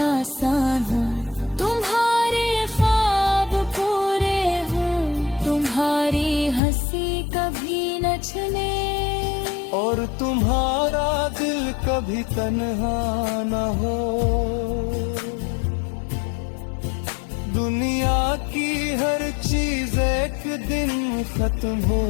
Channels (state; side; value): drops out; right; at 6.6 s